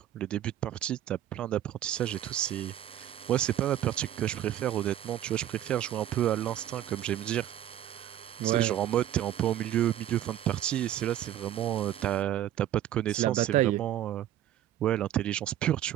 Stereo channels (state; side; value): quieter; left; 12.0 dB